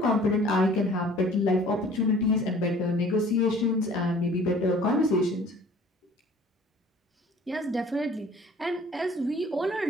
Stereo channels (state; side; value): normal; both; correlation 0.51